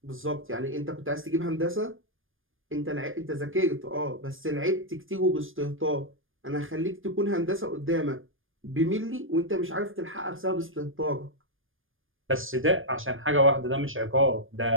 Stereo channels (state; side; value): late; left; 0.59 ms